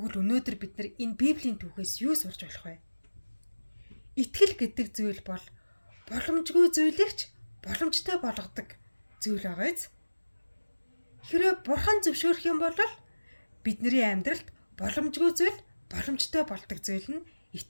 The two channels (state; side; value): inverted; both; correlation -1.00